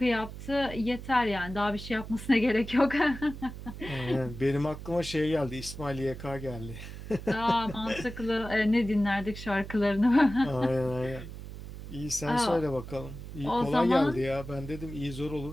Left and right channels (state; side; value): noise; right; hum, 11 dB below the sound